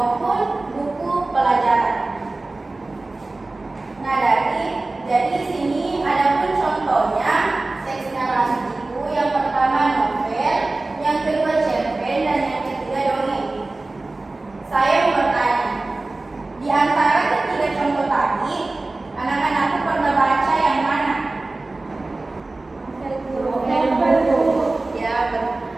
buku pelajaran. Nah, jadi di sini ada pun contohnya teks narasi itu. Yang pertama novel, yang kedua cerpen, dan yang ketiga dongeng. Saya mau bertanya, di antara ketiga contoh tadi, anak-anakku pernah baca yang mana? Ya,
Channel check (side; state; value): left; quieter; 3.1 dB